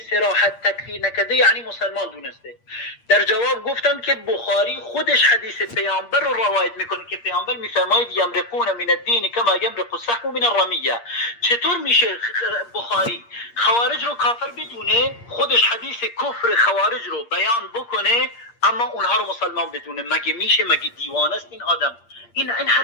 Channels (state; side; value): late; right; 8.5 ms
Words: صراحت تکفیر نکرده یعنی مسلمان دونسته. در جواب گفتم که بخاری خودش حدیث پیامبر رو روایت میکنه که پیامبر میفرماید یمرقون من الدین کما یمرق السهم من الرمیه. چطور میشه بخاری خوارج رو کافر بدونه، خودش حدیث کفر خوارج رو بیان بکنه اما اونها رو مسلمان بدونه؟ مگه میشه؟ مگه دیوانه است این آدم؟ این